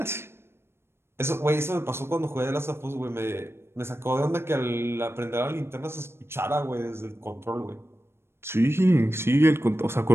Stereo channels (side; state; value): left; late; 0.12 ms